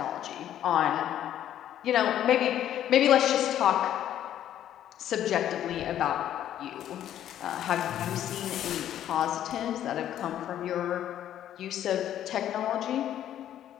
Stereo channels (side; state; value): right; quieter; 11.2 dB